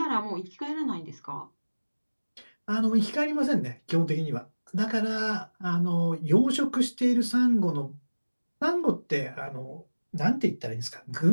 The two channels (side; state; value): both; inverted; correlation -1.00